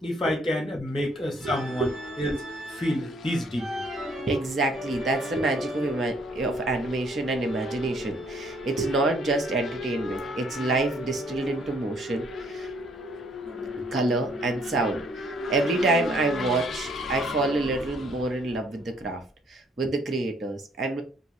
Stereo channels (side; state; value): both; normal; correlation 0.65